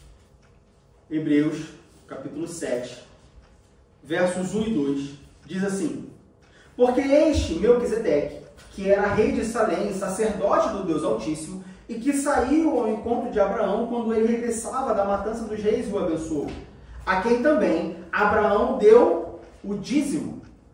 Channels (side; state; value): both; identical; correlation 1.00